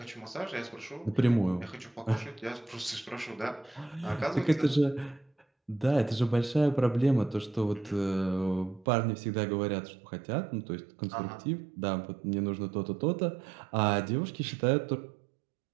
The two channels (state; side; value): drops out; left; at 8.8 s